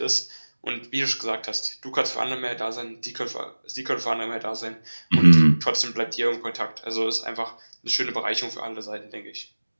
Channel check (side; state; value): both; inverted; correlation -1.00